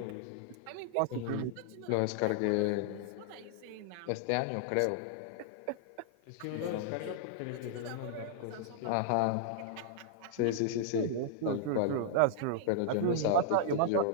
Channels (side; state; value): both; different; correlation -0.01